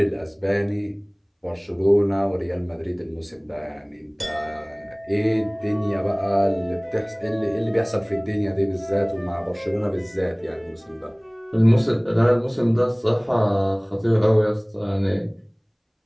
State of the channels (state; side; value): identical; both; correlation 1.00